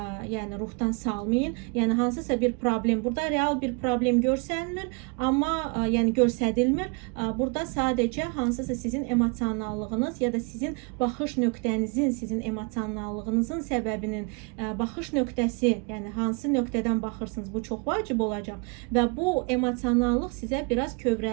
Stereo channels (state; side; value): quieter; left; 33.2 dB